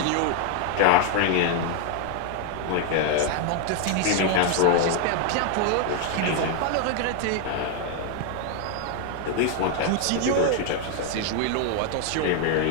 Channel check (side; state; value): both; different; correlation 0.01